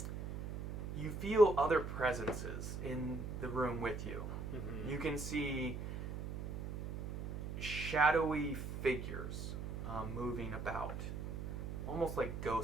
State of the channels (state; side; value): noise; right; hum, 5 dB below the sound